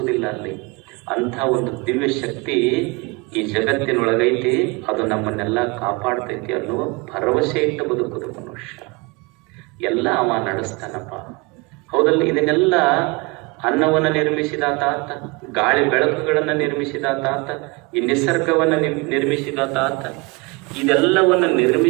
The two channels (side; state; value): left; quieter; 27.2 dB